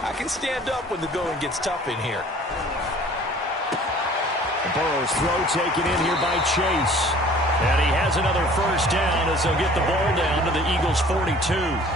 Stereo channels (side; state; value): both; normal; correlation 0.50